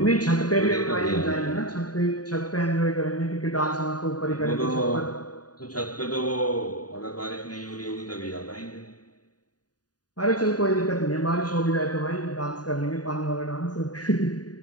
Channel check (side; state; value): right; late; 0.68 ms